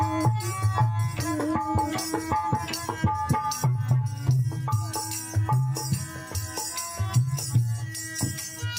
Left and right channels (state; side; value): identical; both; correlation 1.00